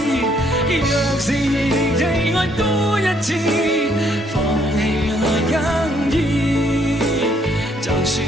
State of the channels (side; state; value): both; normal; correlation 0.68